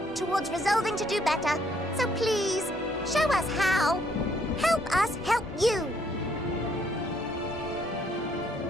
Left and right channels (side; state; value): both; normal; correlation 0.68